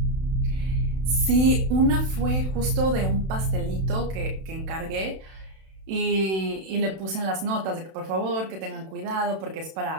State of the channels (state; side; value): late; left; 31 ms